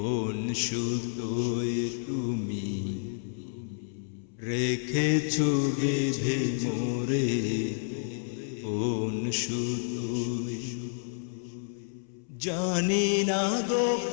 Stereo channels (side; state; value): right; silent; 58 dB below the other